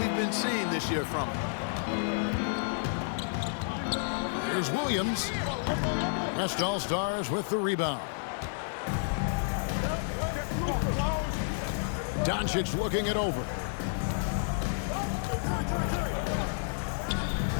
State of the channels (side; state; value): right; silent; 57 dB below the other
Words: been seeing this year from him. Here's Williams. West All-Stars with the rebound. Doncic looking it over.